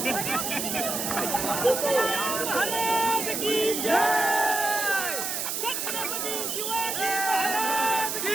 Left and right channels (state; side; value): noise; right; hiss, 2 dB below the sound